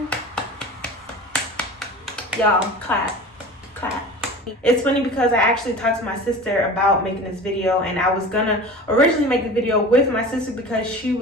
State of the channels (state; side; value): normal; both; correlation 0.36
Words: Y'all, clap. It's funny because I actually talked to my sister about making this video, and I was gonna originally make the video with my sister because she